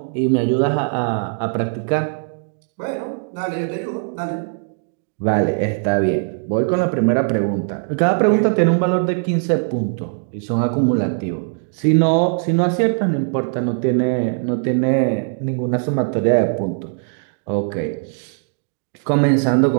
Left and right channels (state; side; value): silent; left; digital silence